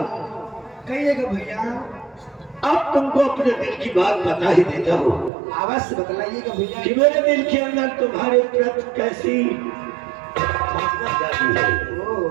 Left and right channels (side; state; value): left; drops out; at 5.3 s